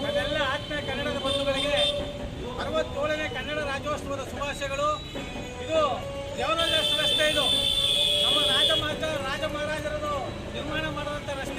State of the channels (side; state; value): both; identical; correlation 1.00